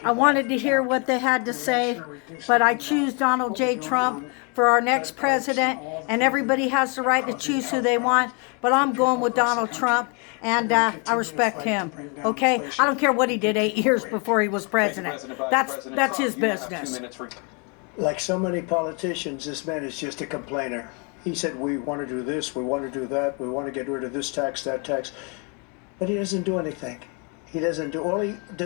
I wanted to hear what they had to say, but I choose Donald J. Trump for our next president, and everybody has the right to choose who they want, but I'm going with Donald Trump, and I respect him, okay? I don't care what he did 8 years before he was president. That's his business. Like so many politicians, this man is just a complainer. He said, we want to do this, we want to do that, we want to get rid of this tax, that tax. But he doesn't do anything. He doesn't do, all he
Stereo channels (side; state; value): right; quieter; 34.6 dB